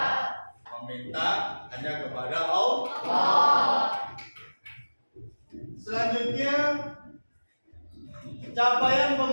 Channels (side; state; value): both; inverted; correlation -1.00